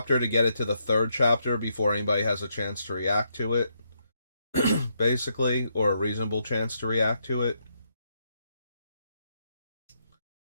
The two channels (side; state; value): both; inverted; correlation -0.78